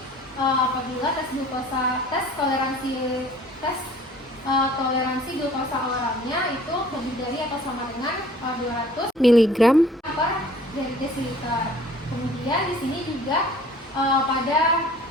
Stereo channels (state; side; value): normal; both; correlation 0.52